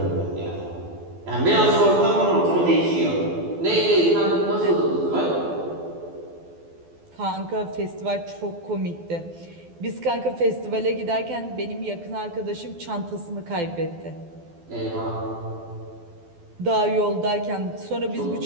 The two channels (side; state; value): left; late; 12 ms